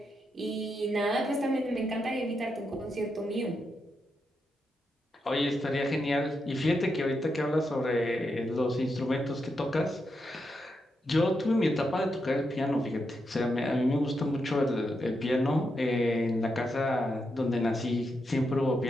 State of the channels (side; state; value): both; normal; correlation 0.84